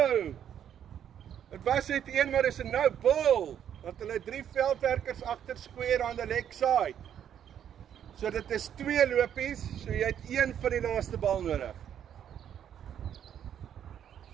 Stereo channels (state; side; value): quieter; left; 9.5 dB